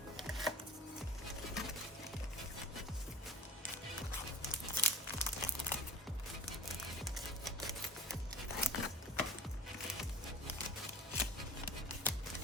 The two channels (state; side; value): normal; both; correlation 0.43